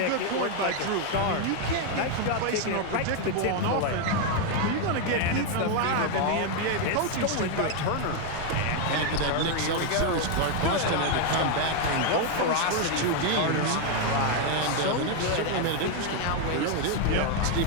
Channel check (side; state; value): both; different; correlation 0.01